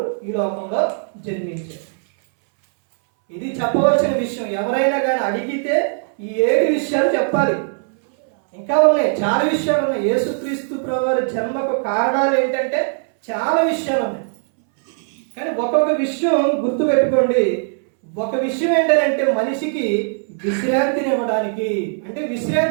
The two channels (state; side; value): silent; left; 66 dB below the other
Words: ఈ లోకంలో జన్మించారు. ఇది చెప్పవలసిన విషయం. ఎవరైనా కానీ అడిగితే ఈ 7 విషయాలు చెప్పాలి. ఇంకా ఉన్నాయి, చాలా విషయాలు ఉన్నాయి. యేసుక్రీస్తు ప్రభువారి జన్మకు కారణాలు ఏంటంటే చాలా విషయాలు ఉన్నాయి. కానీ ఒక్కొక్క విషయం గుర్తుపెట్టుకోండి. ఒక విషయం ఏంటంటే మనిషికి విశ్రాంతిని ఇవ్వడానికి. అంటే